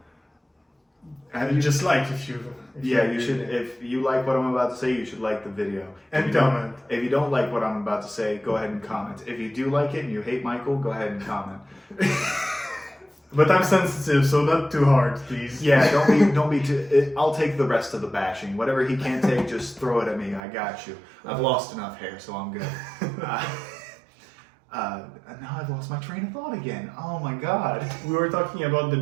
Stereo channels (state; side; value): drops out; left; at 20.4 s